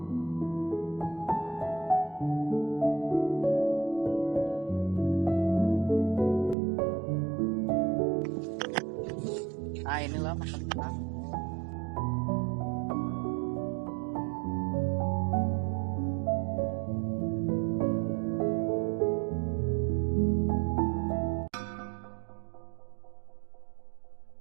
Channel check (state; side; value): drops out; left; at 6.6 s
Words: Nah inilah makam kita.